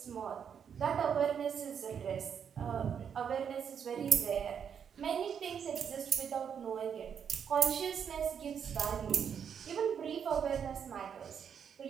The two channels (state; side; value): quieter; left; 7.6 dB